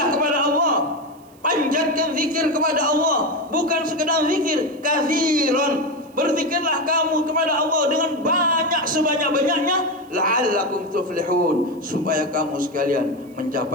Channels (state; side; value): noise; right; hiss, 30 dB below the sound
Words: kepada Allah. Panjatkan zikir kepada Allah, bukan sekedar zikir, katsiran. Berzikirlah kamu kepada Allah dengan banyak, sebanyak-banyaknya, la'allakum tuflihun, supaya kamu sekalian